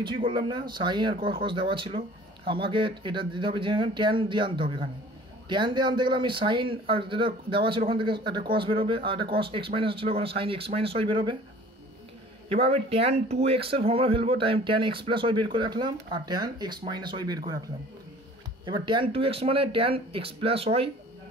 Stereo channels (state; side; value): normal; both; correlation 0.48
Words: করলাম না, সাইন আর কস দেওয়া ছিল, আমাকে এটা দিতে হবে যে ট্যান দিয়ে আনতে হবে, এখানে ট্যান দিয়ে আনতে গেলে আমি সাইন আর যেটা দেওয়া ছিল ওখান থেকে একটা কস বেরোবে, আর একটা কস এক্স মাইনাস ছিল ওখানে সাইন এক্স মাইনাস ওয়াই বেরোবে। এবার আমি ট্যান 2x এর ফর্মুলা ফেলবো, ট্যান এক্স প্লাস ওয়াই বের করে রাখলাম আর ট্যান এক্স মাইনাস ওয়াই বের করে রাখলাম, এবার ট্যান 2x মানে tan x plus y